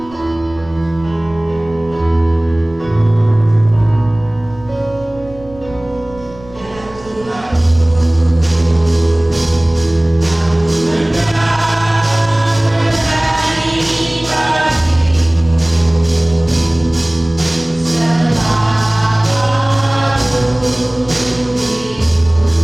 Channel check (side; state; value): right; noise; rumble, 21 dB below the sound